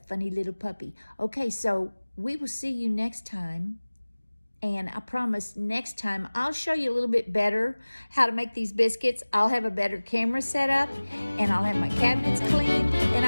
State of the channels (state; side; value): inverted; both; correlation -1.00